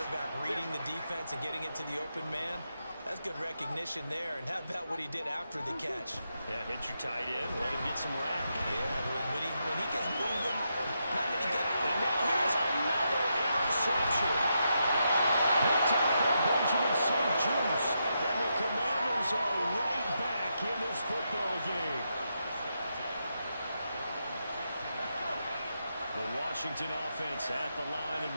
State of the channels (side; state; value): both; inverted; correlation -0.83